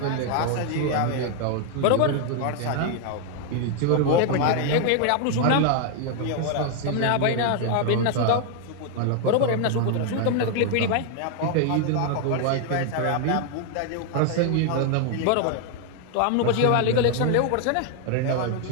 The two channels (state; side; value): different; both; correlation 0.00